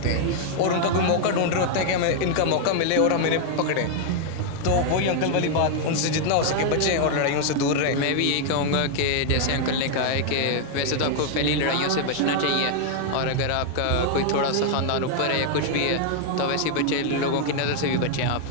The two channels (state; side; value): different; both; correlation 0.00